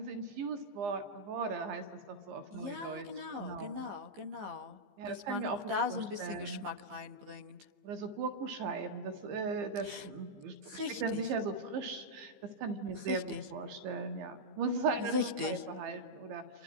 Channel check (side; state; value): left; late; 15 ms